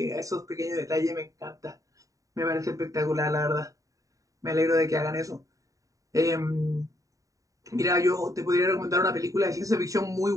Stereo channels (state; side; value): late; left; 0.16 ms